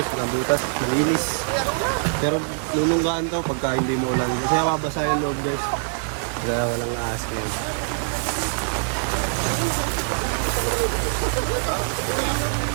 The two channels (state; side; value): silent; left; 63 dB below the other